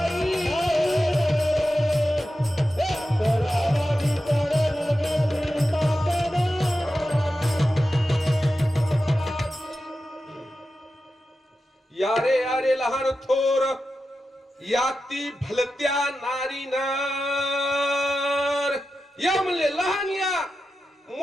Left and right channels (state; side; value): normal; both; correlation 0.91